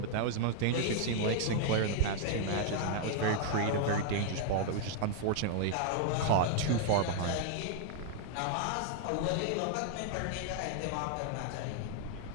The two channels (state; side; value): different; both; correlation 0.00